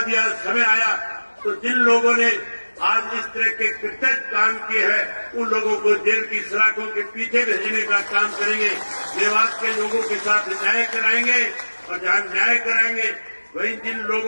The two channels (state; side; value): inverted; both; correlation -1.00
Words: दिया, समय आया, तो जिन लोगों ने आज इस तरह के कृतज्ञ काम किए हैं उन लोगों को जेल की सलाखों के पीछे भेजने का काम करेंगे। मेवात के लोगों के साथ न्याय कराएंगे और जहां न्याय कराएंगे वहीं जिन